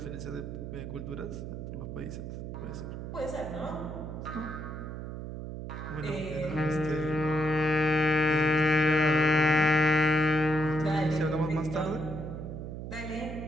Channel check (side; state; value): right; noise; hum, 7 dB below the sound